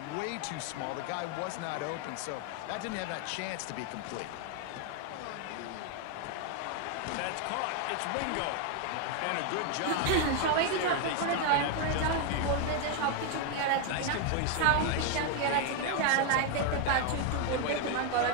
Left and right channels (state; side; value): different; both; correlation 0.01